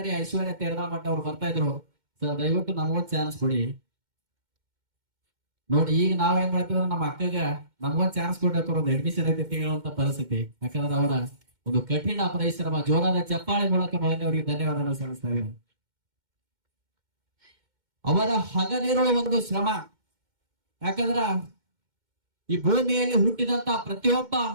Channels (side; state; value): left; late; 2.1 ms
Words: ಐಶ್ವರ್ಯ ತೇರದಾಳ್ ಮಠ ಅವ್ರು ಬರ್ತಾ ಇದ್ರು. ಸರ್ ದಯವಿಟ್ಟು ನಮಗೊಂದು ಚಾನ್ಸ್ ಕೊಡಿ. ನೋಡಿ, ಈಗ ನಾವೇನ್ ಮಾಡ್ತೀವಿ ನಮ್ಮ ಅಕ್ಕಗ ನಮಗೊಂದು ಚಾನ್ಸ್ ಕೊಟ್ಟಿರ್ತಾರ, ಒಂದು ಅಡ್ಮಿಷನ್ ಐತಿ ಹೇಳುವಂತ ಪರಿಸ್ಥಿತಿ. ಯಾಕಂದ್ರೆ ಅವರ ಒಂದು ಕಠಿಣ ಪರಿಶ್ರಮ, ಜೋರಾದ ಚಪ್ಪಾಳೆ ಮೂಲಕ ಮೊದಲನೇವರಿಗೆ ಧನ್ಯವಾದ ಸಲ್ಲಿಸ್ತಾ ಇದ್ದೀನಿ. ಅವರ ಹಗಲಿರುವ ಒಂದು ಶ್ರಮ, ಯಾಕಂದ್ರ ಈ ಭೂಮಿಯಲ್ಲಿ ಹುಟ್ಟಿದಂತಹ ಪ್ರತಿಯೊಬ್ಬ